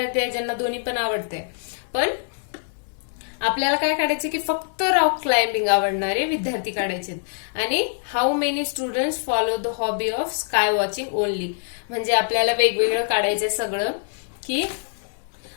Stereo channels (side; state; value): right; silent; 60 dB below the other